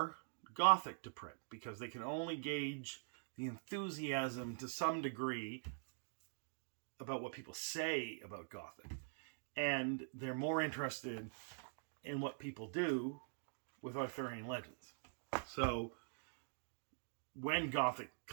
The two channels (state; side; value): silent; left; digital silence